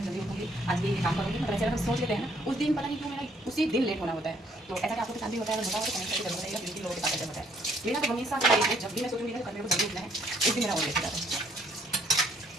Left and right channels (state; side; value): normal; both; correlation 0.66